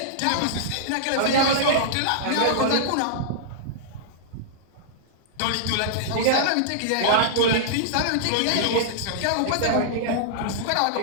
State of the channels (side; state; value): both; different; correlation -0.02